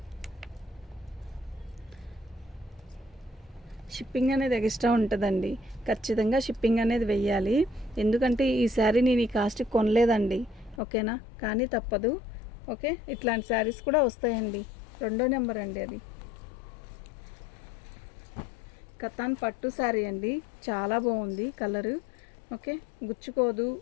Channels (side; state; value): right; drops out; at 10.8 s